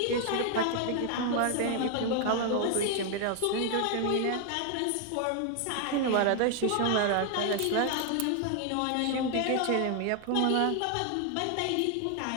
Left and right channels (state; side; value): different; both; correlation 0.00